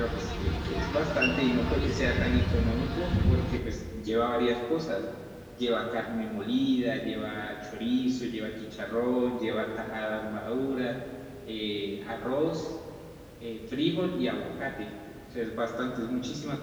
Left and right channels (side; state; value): both; identical; correlation 1.00